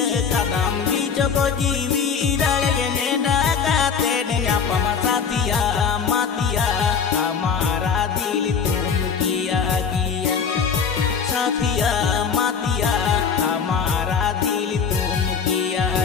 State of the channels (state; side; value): quieter; right; 6.3 dB